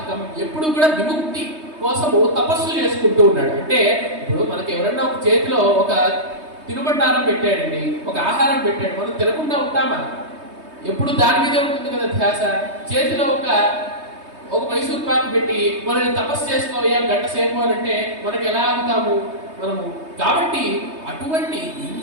ఎప్పుడు కూడా విముక్తి కోసము తపస్సు చేసుకుంటూ ఉన్నాడు. అంటే ఇప్పుడు మనకి ఎవరన్నా ఒక చేతిలో ఒక తినుబండారం పెట్టాడండి, ఒక ఆహారం పెట్టాడు, మనం తినకుండా ఉంటామా? ఎప్పుడు దాని మీదే ఉంటుంది కదా ధ్యాస. చేతిలో ఒక మైసూర్ పాకు పెట్టి మనల్ని తపస్సు చేసుకోవాలి గంట సేపు అంటే మనకి ఎలా అవుతాము మనము? కాబట్టి అటువంటి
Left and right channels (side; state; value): left; late; 3.2 ms